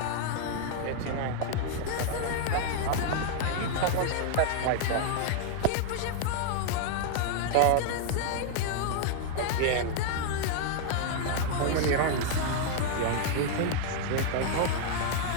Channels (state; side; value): different; both; correlation 0.00